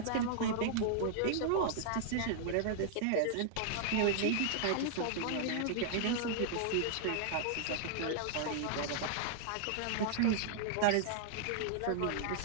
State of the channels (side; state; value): both; different; correlation 0.00